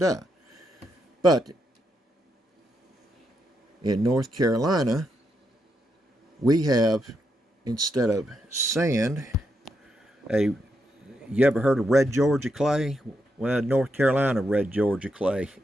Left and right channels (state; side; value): normal; both; correlation 0.82